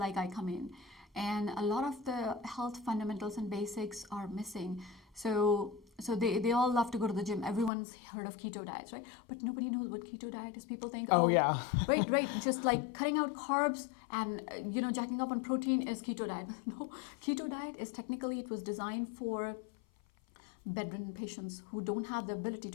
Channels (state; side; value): drops out; right; at 7.7 s